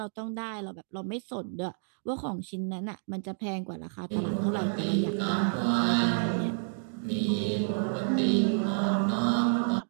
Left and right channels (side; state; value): left; silent; digital silence